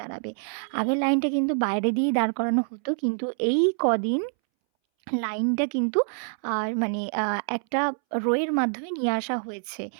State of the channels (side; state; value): left; silent; 61 dB below the other